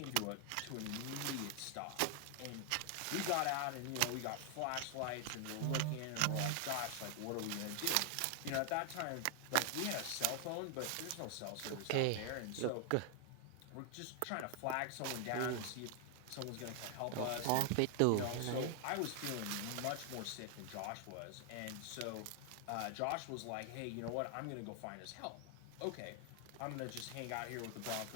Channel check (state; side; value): different; both; correlation 0.00